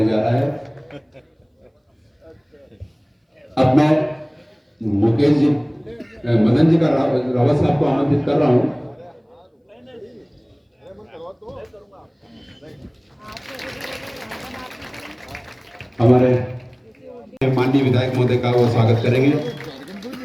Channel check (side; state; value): both; identical; correlation 1.00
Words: जा रहा है। अब मैं मुकेश जी मदन जी का रावत साहब को आमंत्रित कर रहा हूँ। हमारे माननीय विधायक महोदय का वो स्वागत करेंगे।